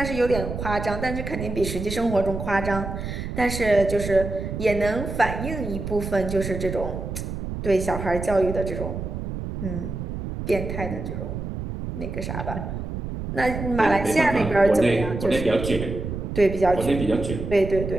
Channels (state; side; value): noise; right; rumble, 6 dB below the sound